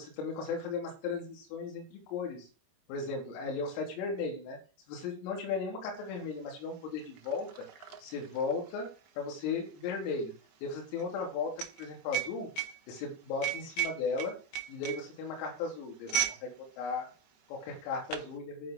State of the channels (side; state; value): right; late; 20 ms